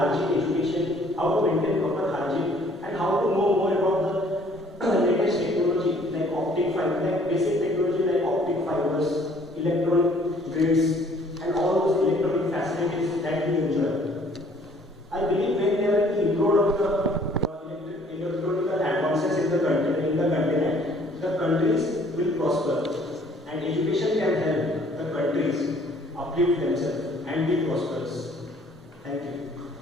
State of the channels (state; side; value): normal; both; correlation 0.58